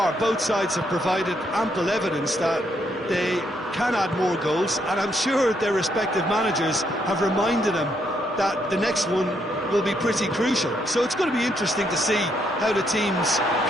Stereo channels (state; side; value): normal; both; correlation 0.75